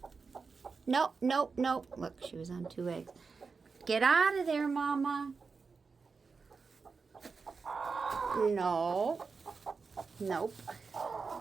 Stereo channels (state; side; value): quieter; left; 4.8 dB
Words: Nope, nope, nope. Look, she was on 2 eggs. Get out of there, Mama. No. Nope.